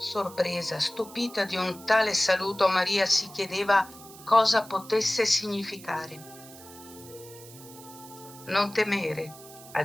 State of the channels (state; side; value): noise; right; hiss, 18 dB below the sound